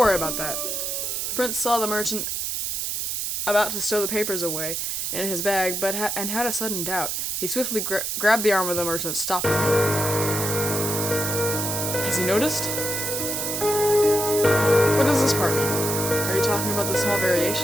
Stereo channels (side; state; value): right; noise; hiss, 2 dB below the sound